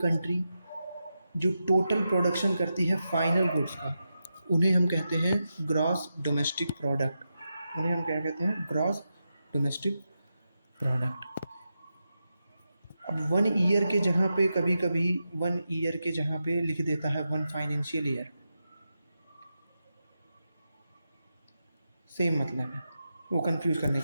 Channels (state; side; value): inverted; both; correlation -0.88